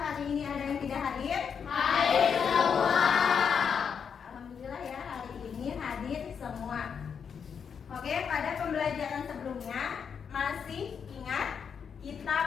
hari ini ada yang tidak hadir? Hadir semua. Alhamdulillah ya, hari ini hadir semua. Oke, pada pembelajaran sebelumnya masih ingat kita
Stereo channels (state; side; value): quieter; right; 6.8 dB